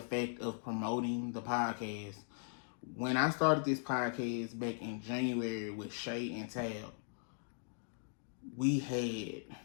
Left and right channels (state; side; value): silent; right; digital silence